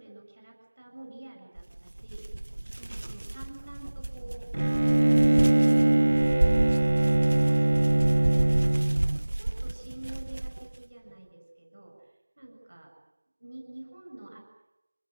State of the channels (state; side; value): inverted; both; correlation -1.00